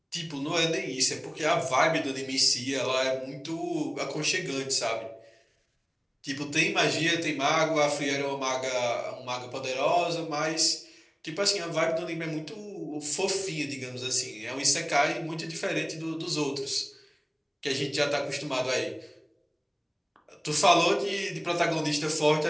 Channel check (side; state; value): both; identical; correlation 1.00